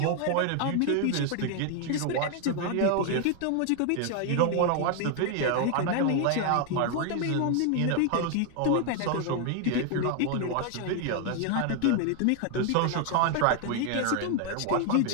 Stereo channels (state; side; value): different; both; correlation 0.00